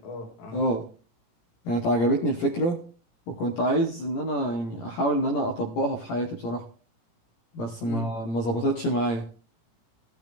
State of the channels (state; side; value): late; right; 17 ms